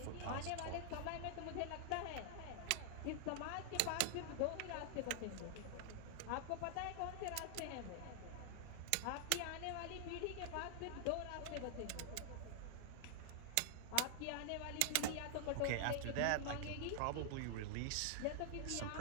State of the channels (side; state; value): both; different; correlation -0.01